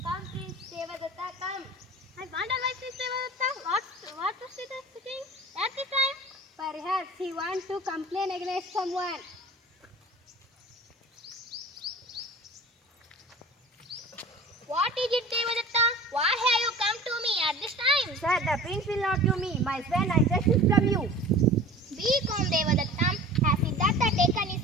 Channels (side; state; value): both; normal; correlation 0.40